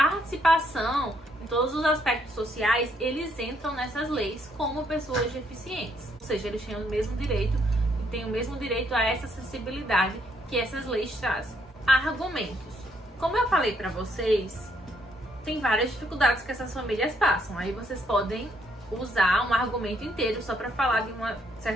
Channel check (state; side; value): normal; both; correlation 0.72